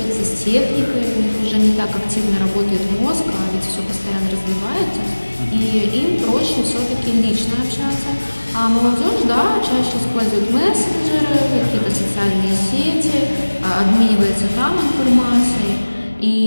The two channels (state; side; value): inverted; both; correlation -1.00